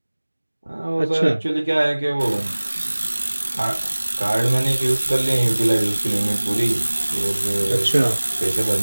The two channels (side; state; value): both; inverted; correlation -1.00